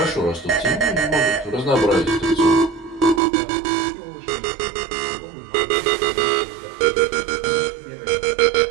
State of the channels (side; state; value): left; drops out; at 3.2 s